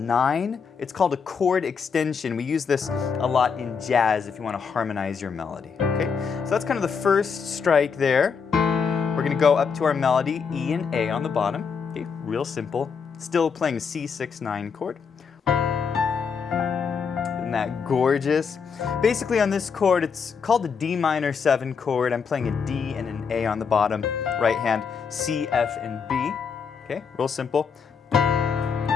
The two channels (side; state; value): right; quieter; 6.0 dB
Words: It's called a chord extension. We use this a lot in jazz if you want to harmonize your melody. Okay, so that's kind of the first strike there. We're going to go up to our melody, E and A on the bottom. Okay, real simple. Still playing a C6-9 chord. Isn't that gorgeous? Basically on this chord, it's called the D minor 7 chord. I'm playing a D and an A on the bottom. Right hand, C, F, and B. Okay, real simple.